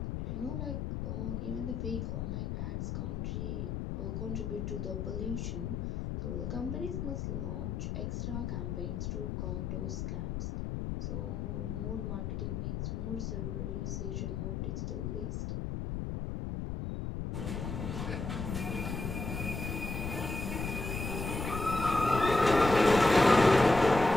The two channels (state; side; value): noise; left; rumble, 3 dB below the sound